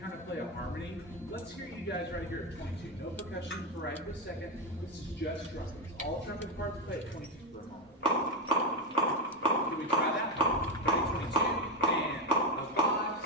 of play a harmony. Let's hear you guys right here at 22. No percussion for right this second. This is just trumpets. All trumpet parts play at 22 for a moment. Can we try that? Ready, 22, and a 5,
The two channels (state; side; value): normal; both; correlation 0.11